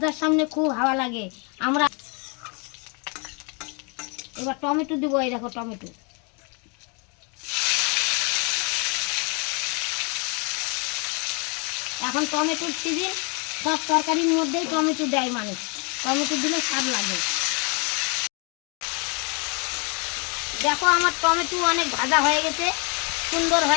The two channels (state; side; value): quieter; right; 33.7 dB